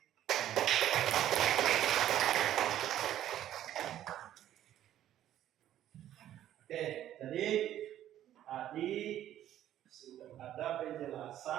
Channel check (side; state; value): left; quieter; 12.0 dB